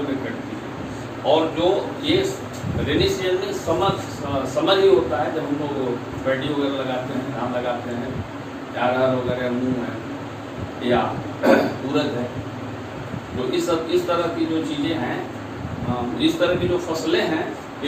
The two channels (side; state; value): both; identical; correlation 1.00